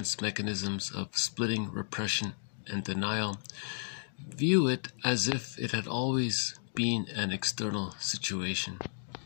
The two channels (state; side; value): silent; right; digital silence